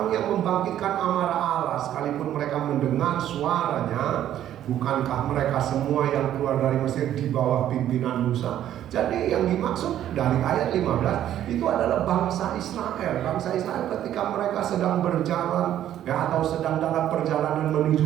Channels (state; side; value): quieter; left; 11.5 dB